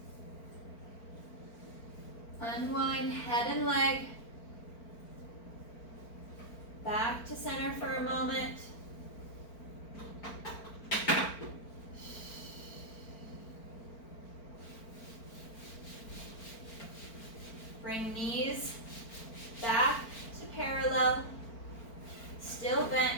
Unwind head and leg. Back to center for a moment. still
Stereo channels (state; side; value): late; right; 4.4 ms